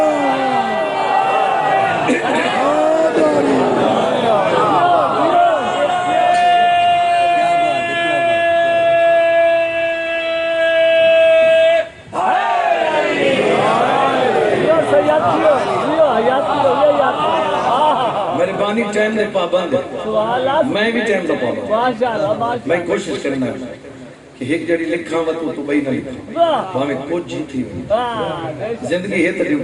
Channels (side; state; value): both; identical; correlation 1.00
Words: ٹائم دے پابند ہے سبحان اللہ میں بھی ٹائم دا پابند ماشاءاللہ میں ماشاءاللہ کوشش کرنا ہے کہ ایک جڑی لکھاں و تو بھئی نہ لکھاں واہ وہ ہمیں کچھ ہی تھی واہ زندگی ہے تو